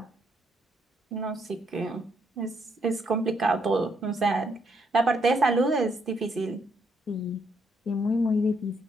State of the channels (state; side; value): normal; both; correlation 0.74